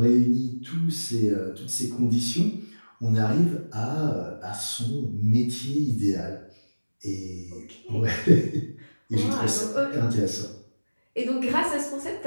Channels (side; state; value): both; inverted; correlation -1.00